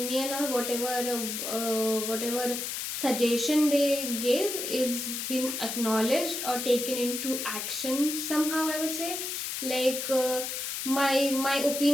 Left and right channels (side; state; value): left; noise; hiss, 4 dB below the sound